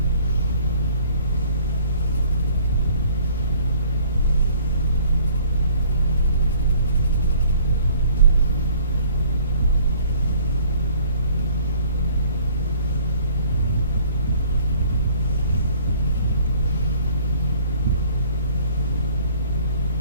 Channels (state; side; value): inverted; both; correlation -0.57